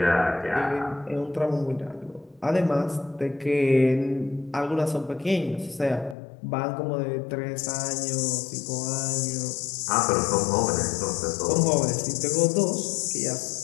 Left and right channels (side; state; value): right; drops out; at 6.2 s